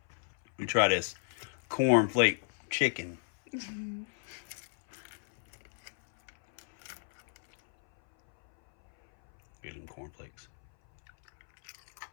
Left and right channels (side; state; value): right; silent; 56 dB below the other